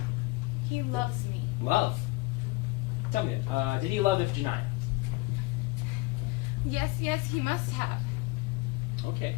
He loves me. Love? Tell me then, did he love Iphigenia? Yes, he must have. Okay.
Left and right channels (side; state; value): right; quieter; 21.6 dB